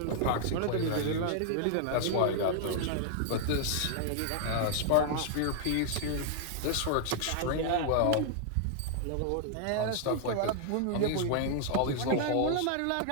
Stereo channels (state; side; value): different; both; correlation -0.01